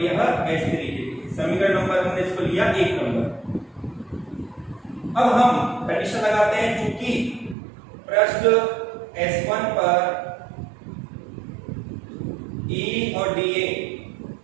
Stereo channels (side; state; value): left; drops out; at 7.6 s